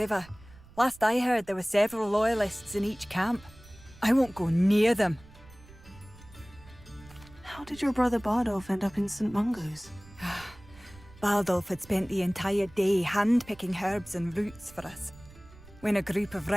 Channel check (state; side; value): noise; right; rumble, 22 dB below the sound